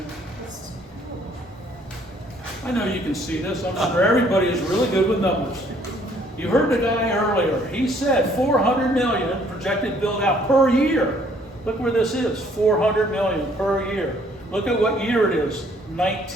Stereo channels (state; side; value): normal; both; correlation 0.62